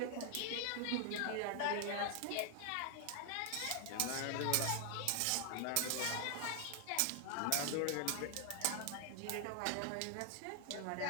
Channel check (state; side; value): different; both; correlation 0.00